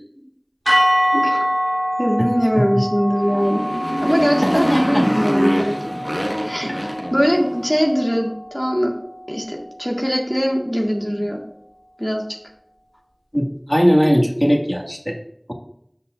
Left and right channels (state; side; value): identical; both; correlation 1.00